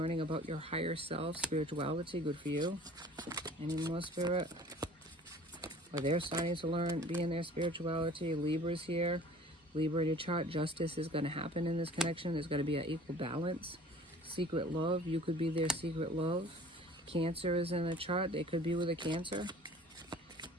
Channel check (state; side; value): normal; both; correlation 0.47